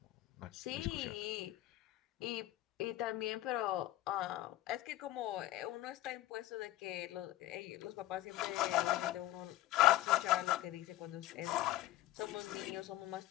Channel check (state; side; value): quieter; right; 15.2 dB